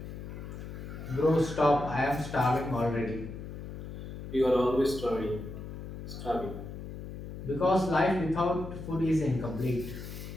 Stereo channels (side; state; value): left; noise; hum, 9 dB below the sound